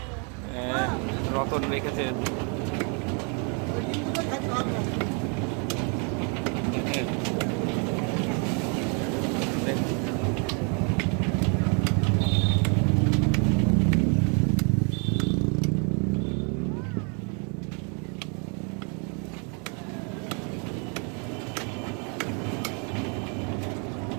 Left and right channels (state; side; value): quieter; left; 37.2 dB